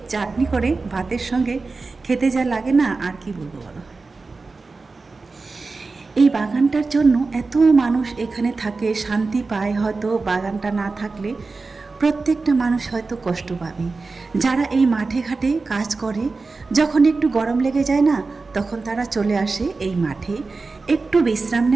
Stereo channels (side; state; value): left; quieter; 3.9 dB